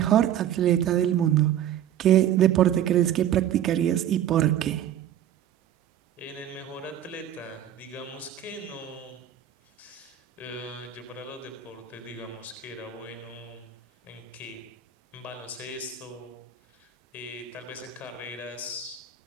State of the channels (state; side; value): quieter; left; 10.6 dB